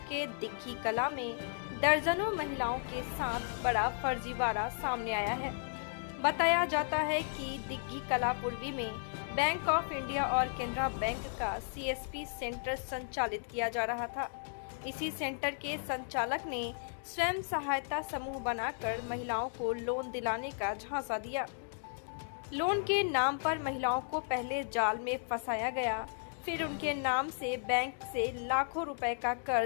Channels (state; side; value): silent; right; digital silence